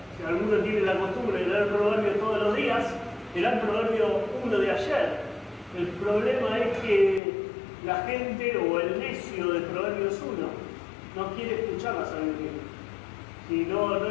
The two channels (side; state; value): right; drops out; at 7.2 s